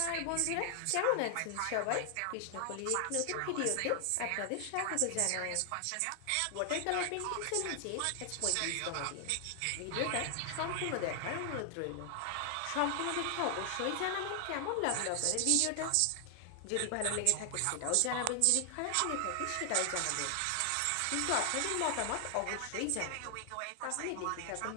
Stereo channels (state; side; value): different; both; correlation 0.00